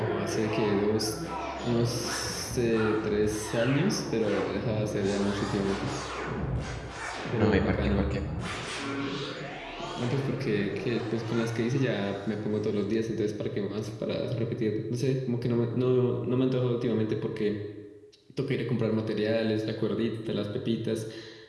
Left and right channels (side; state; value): both; identical; correlation 1.00